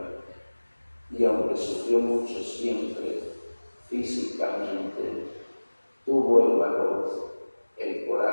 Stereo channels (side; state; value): both; inverted; correlation -1.00